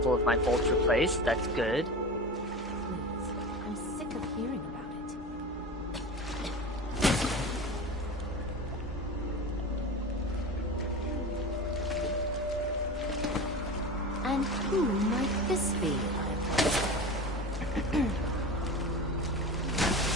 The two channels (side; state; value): both; normal; correlation 0.30